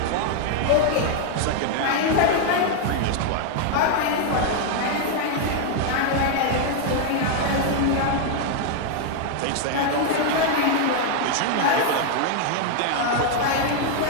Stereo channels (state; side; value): different; both; correlation 0.00